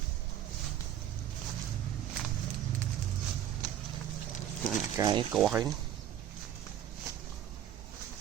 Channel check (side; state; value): left; quieter; 10.7 dB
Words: cái cỏ ấy